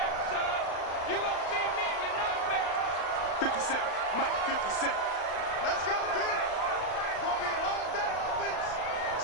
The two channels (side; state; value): right; late; 35 ms